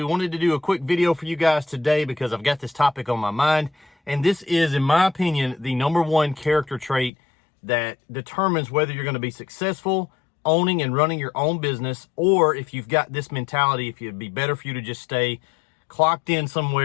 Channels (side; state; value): right; drops out; at 7.1 s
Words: Wanted to do a quick video for you guys today because I've got this topic on my mind. And this is, in my opinion, the #1 character trait that determines whether you're going to be successful owning and running your own business, or if you've got this mentality, if it'd be better for you to just stay clocked in